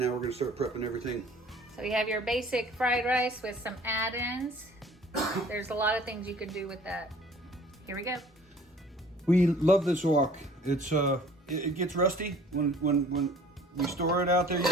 we're going to start prepping everything. So you have your basic fried rice with some add-ins. There's a lot of things you can do with that. Here we go. We love this wok. It's it gets rusty when we store it out there. You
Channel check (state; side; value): normal; both; correlation 0.51